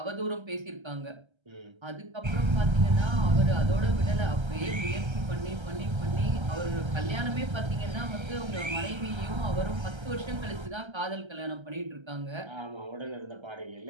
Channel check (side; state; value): left; late; 1.3 ms